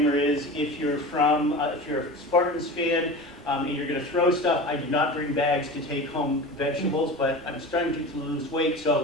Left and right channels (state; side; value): normal; both; correlation 0.32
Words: is if you're a Spartans fan, and you're gonna throw stuff, I do not bring bags to take home vegetables, but I'm starting to lose weight,